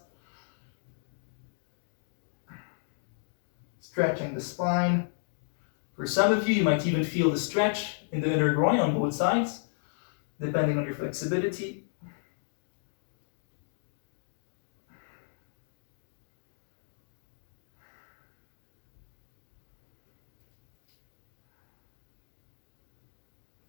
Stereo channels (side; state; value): right; silent; digital silence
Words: Stretching the spine. For some of you, you might even feel the stretch in the inner groin on both sides, depending on your flexibility.